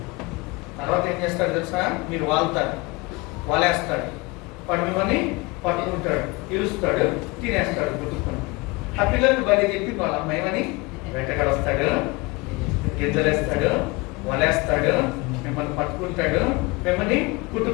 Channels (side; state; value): right; quieter; 25.2 dB